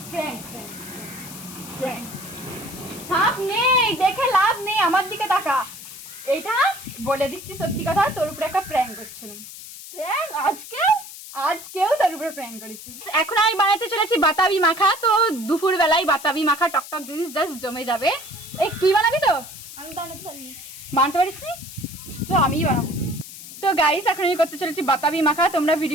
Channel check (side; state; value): left; noise; hiss, 14 dB below the sound